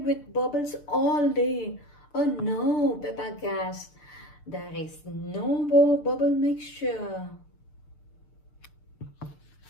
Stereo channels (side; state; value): right; late; 6.7 ms